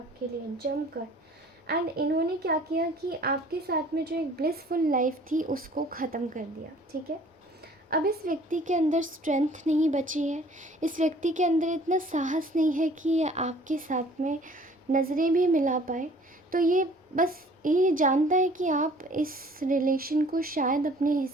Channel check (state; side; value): normal; both; correlation 0.52